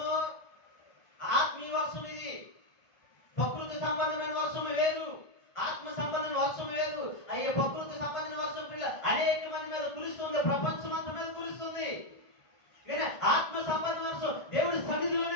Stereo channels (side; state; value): right; late; 1.5 ms